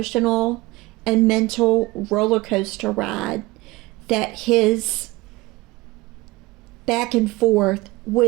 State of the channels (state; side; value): quieter; left; 21.1 dB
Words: and mental roller coaster ride that his back and forth